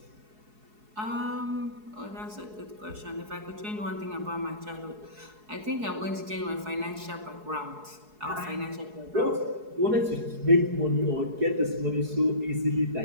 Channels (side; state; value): left; late; 4.7 ms